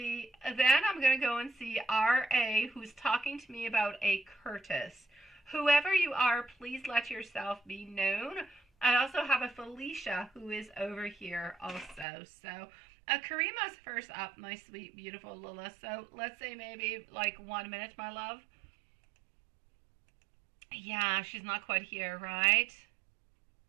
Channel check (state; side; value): drops out; left; at 12.1 s